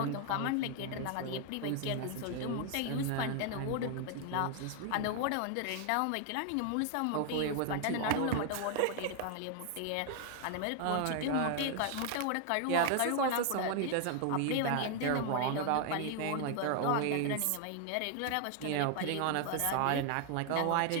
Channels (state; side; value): different; both; correlation 0.00